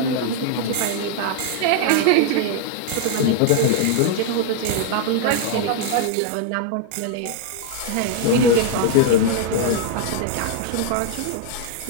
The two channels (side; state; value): both; different; correlation 0.00